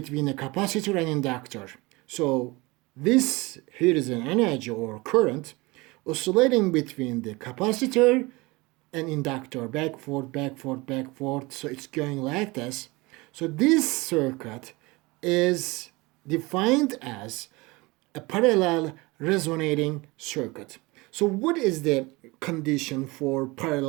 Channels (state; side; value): quieter; left; 23.5 dB